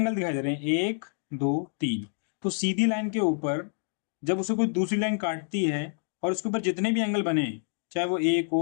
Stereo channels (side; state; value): right; silent; digital silence